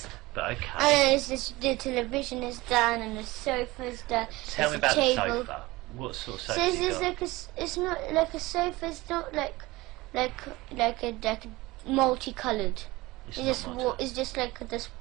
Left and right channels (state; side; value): quieter; left; 20.5 dB